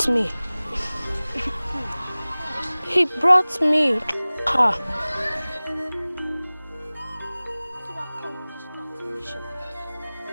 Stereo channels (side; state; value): both; inverted; correlation -0.99